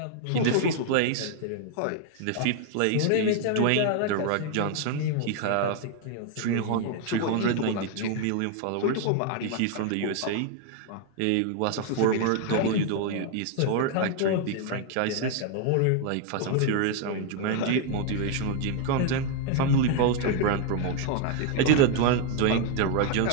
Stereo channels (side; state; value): both; different; correlation 0.00